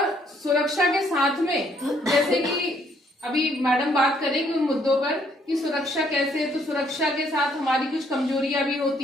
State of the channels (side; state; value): both; normal; correlation 0.67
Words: सुरक्षा के साथ में जैसे कि अभी मैडम बात करेंगे उन मुद्दों पर कि सुरक्षा कैसे, तो सुरक्षा के साथ हमारी कुछ कमजोरियां भी